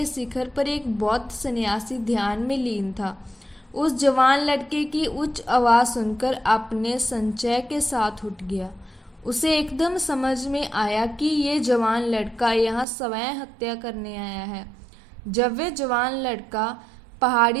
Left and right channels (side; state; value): left; drops out; at 12.9 s